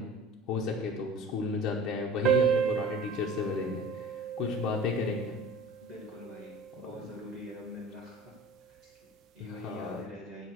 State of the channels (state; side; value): normal; both; correlation 0.41